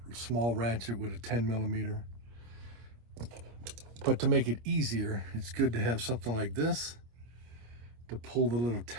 small ratchet with a 10mm. But to make it easier, it's good to have something like this to pull the little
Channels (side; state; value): left; late; 25 ms